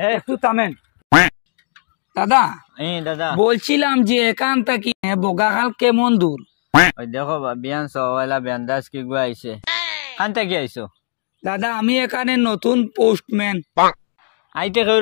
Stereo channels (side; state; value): right; silent; digital silence